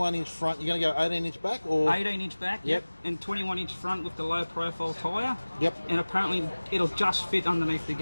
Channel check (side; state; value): both; inverted; correlation -1.00